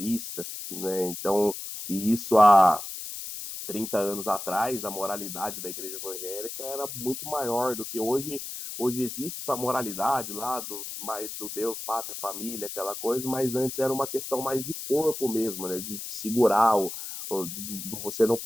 né? Então, e isso há 30 anos atrás, a moralidade da igreja evangélica era muito maior do que hoje. Hoje existe essa moralidade lá do Deus, pátria, família, aquela coisa, mas antes era uma questão mais de corpo mesmo, né? De segurar, de você não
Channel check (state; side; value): noise; left; hiss, 8 dB below the sound